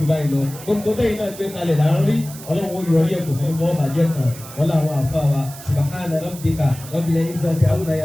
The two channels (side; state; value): right; noise; hiss, 16 dB below the sound